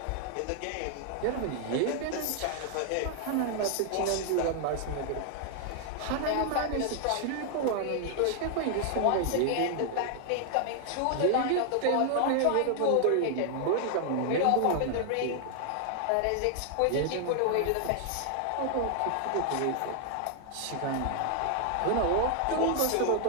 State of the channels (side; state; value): both; different; correlation 0.00